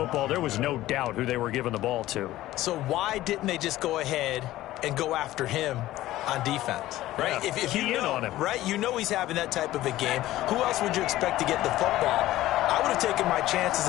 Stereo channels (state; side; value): quieter; right; 15.5 dB